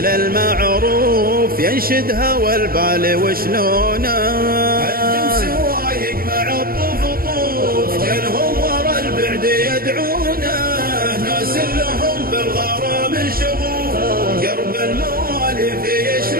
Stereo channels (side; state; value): left; late; 0.43 ms